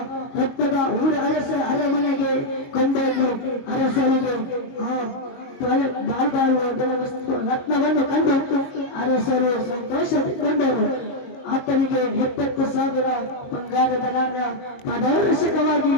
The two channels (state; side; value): late; right; 22 ms